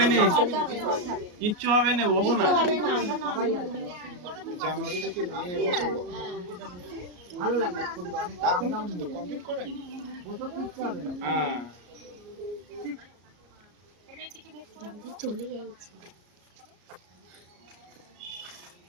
না, কিচ্ছু হবে না, বসো না। জানুয়ারি থেকে নিয়ে বসে ভালো লাগে, অনেক আপ ডাউন কমপ্লিট করেন, বসে কিচ্ছু হবে না। হ্যাঁ, চলে গেছে।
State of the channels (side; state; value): left; late; 33 ms